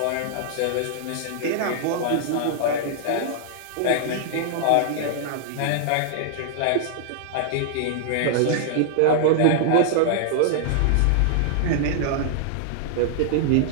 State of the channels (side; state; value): both; different; correlation -0.01